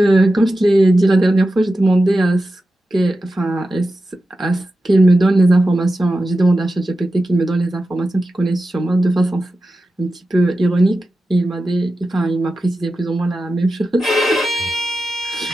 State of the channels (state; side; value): normal; both; correlation 0.92